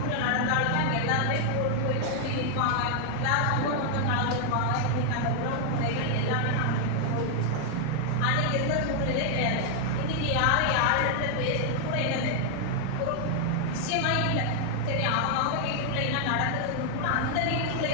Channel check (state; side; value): different; both; correlation 0.00